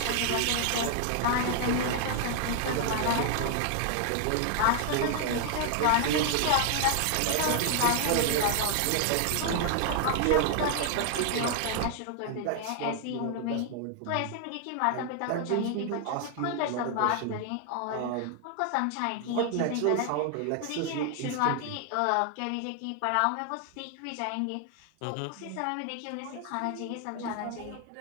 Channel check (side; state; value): both; different; correlation 0.00